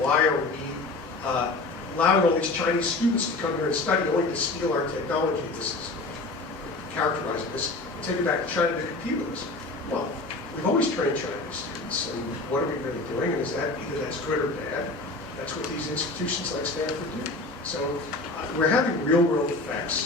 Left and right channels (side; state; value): right; quieter; 3.2 dB